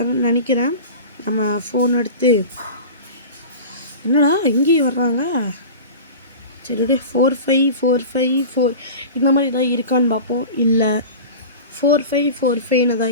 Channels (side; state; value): both; inverted; correlation -0.33